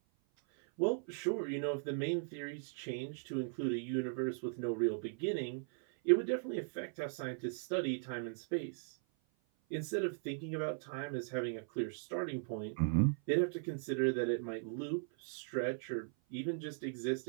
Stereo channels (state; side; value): silent; left; 52 dB below the other